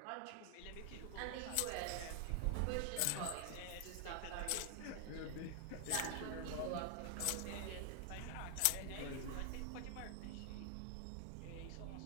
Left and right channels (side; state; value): both; different; correlation 0.00